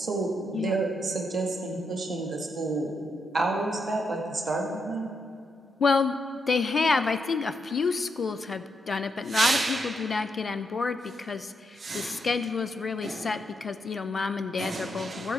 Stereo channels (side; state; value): both; normal; correlation 0.81